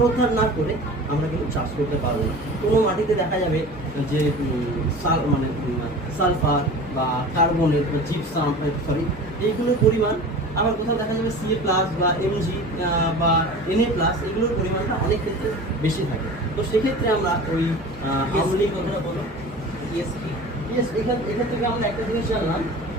না করে আমরা কিন্তু চাষ করতে পারবো না। কোনো মাটিতে দেখা যাবে যে সালফার বা কার্বনের জিপসাম এইগুলোর পরিমাণ, আবার কোথাও দেখা যাবে সিএ প্লাস বা এমজি বা এনএ প্লাস, এগুলোর পরিমাণটা অনেক ক্ষেত্রে বেশি থাকে। তো সেক্ষেত্রে আমরা ওই আমলি কথাটা বলো ইএসপি। এখান থেকে আমরা একটা জিনিস জানলাম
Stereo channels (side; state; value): both; normal; correlation 0.38